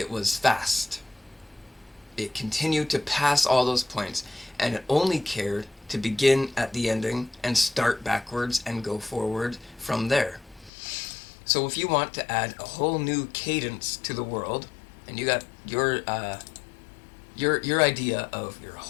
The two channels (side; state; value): right; drops out; at 10.7 s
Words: was fast. It continued to pass all those points, and it only cared to begin at the ending and start backwards and go forward from there. So if you want to add a whole new cadence to the world, and you got your idea of your